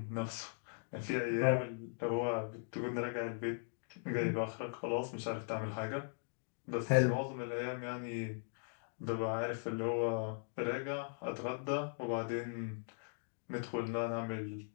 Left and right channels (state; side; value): silent; right; digital silence